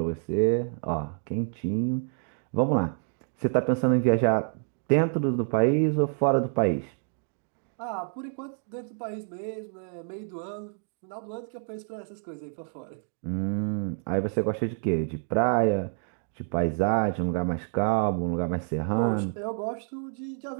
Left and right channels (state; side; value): silent; left; 56 dB below the other